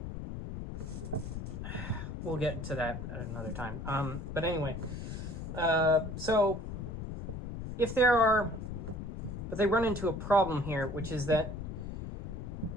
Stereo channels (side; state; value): left; noise; rumble, 7 dB below the sound